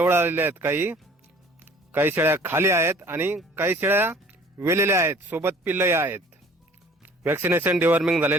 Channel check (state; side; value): normal; both; correlation 0.51